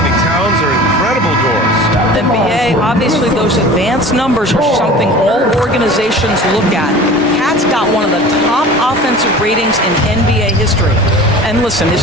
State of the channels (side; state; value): both; normal; correlation 0.40